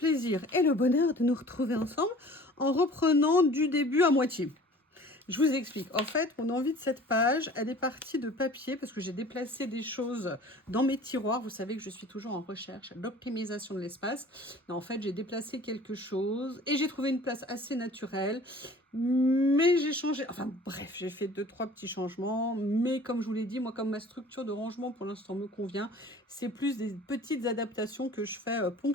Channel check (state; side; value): normal; both; correlation 0.46